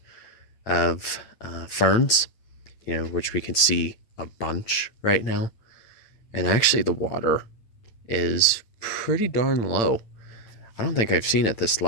of ferns, which we can see a bunch right now. And actually the water is pretty darn low. I don't think I've seen it this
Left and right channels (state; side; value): late; right; 9.0 ms